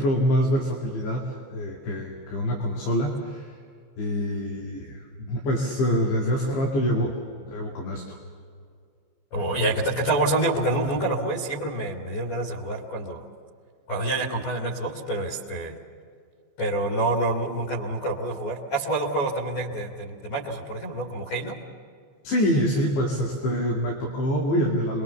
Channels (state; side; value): late; right; 15 ms